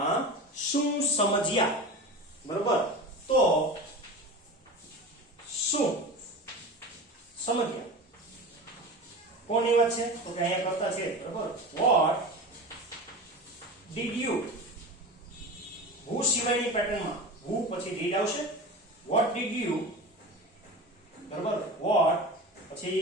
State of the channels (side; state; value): both; normal; correlation 0.30